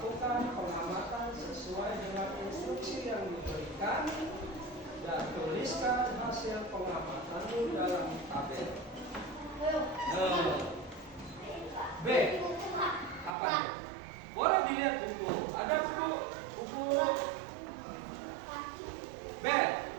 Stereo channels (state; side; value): drops out; left; at 13.4 s